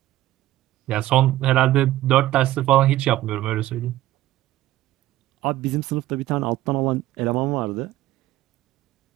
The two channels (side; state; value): left; quieter; 15.0 dB